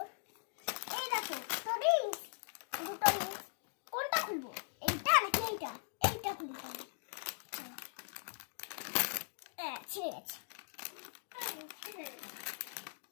এই দেখো টরিংস, দুটো রিংস। কোনটা খুলবো, এইটা নাকি এইটা? এইটা খুলি তাহলে। ছিঁড়ে গেছে।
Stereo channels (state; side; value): silent; right; digital silence